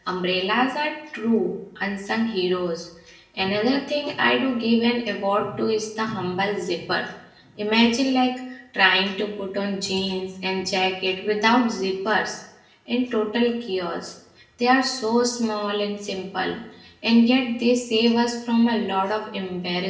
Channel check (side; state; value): both; identical; correlation 1.00